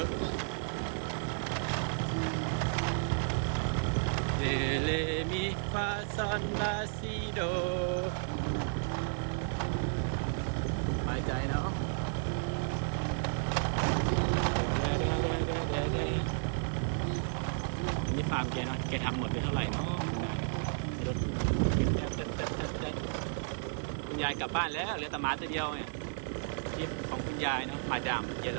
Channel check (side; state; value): left; silent; digital silence